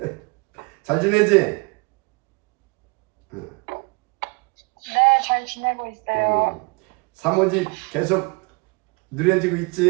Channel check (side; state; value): left; quieter; 29.3 dB